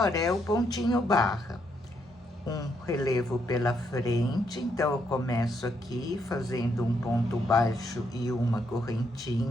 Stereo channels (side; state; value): both; normal; correlation 0.75